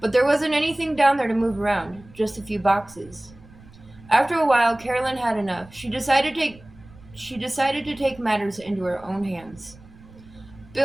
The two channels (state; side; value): noise; right; rumble, 23 dB below the sound